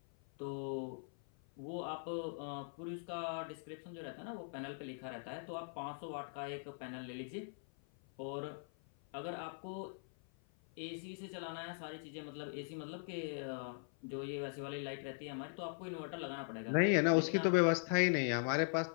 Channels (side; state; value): right; silent; 51 dB below the other